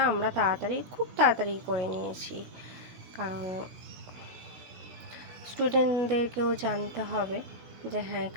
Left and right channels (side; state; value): left; late; 17 ms